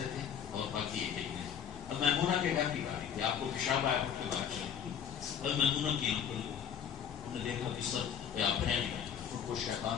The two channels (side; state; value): right; quieter; 8.3 dB